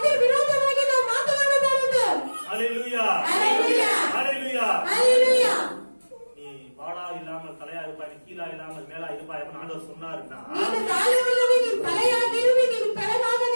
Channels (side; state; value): both; inverted; correlation -1.00